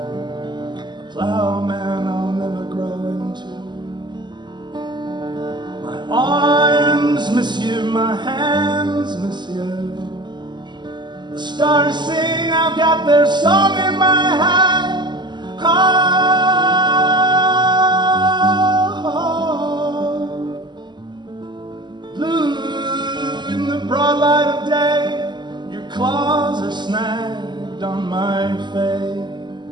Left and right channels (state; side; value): late; left; 0.21 ms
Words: A plowman I'll never grow into. My arms miss you, my hands miss you. The stars sing, I've got their song in my hand. Oh, blue in the broad light of day, your claws are snagged on my face.